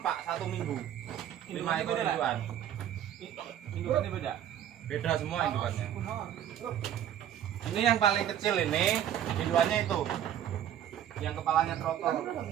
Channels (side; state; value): left; quieter; 10.6 dB